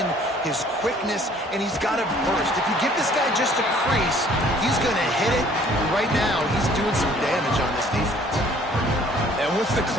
his quickness, and he's got a burst. If you give this guy just a crease, he's going to hit it. Right now, he's doing some damage on this defense. And what's the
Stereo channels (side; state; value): both; normal; correlation 0.57